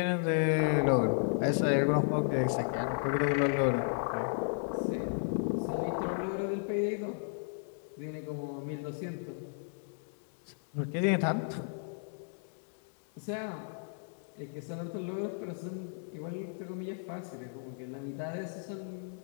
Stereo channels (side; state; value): right; silent; digital silence